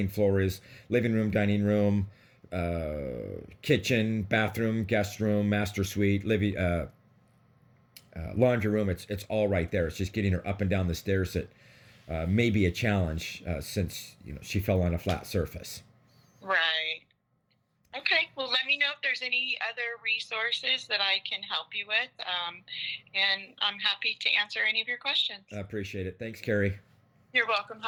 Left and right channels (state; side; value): identical; both; correlation 1.00